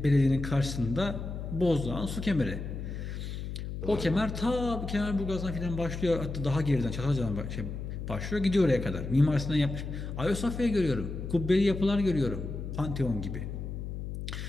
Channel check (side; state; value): left; noise; hum, 6 dB below the sound